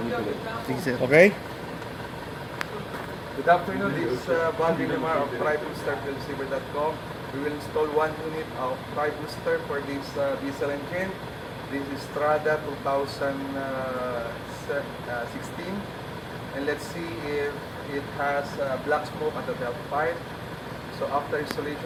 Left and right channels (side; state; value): both; identical; correlation 1.00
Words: tuloy. Sige sir. Okay? Good afternoon, this is Balvin Lamar of TriBooster.com. We will install one unit of TriBooster for this diesel engine. This is Strada 2016. And let's see if it has black smoke at the valve pipe. So after